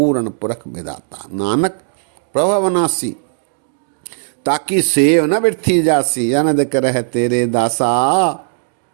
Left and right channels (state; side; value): silent; left; digital silence